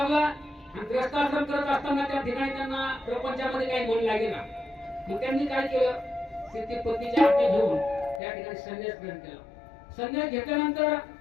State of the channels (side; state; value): right; drops out; at 8.2 s